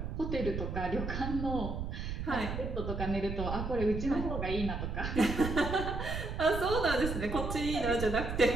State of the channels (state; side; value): noise; right; rumble, 4 dB below the sound